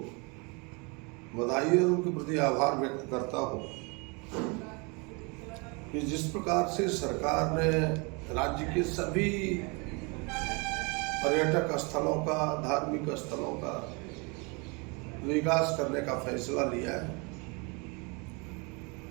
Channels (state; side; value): quieter; left; 30.7 dB